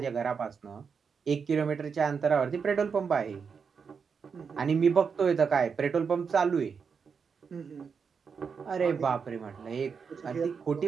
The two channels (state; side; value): quieter; left; 6.0 dB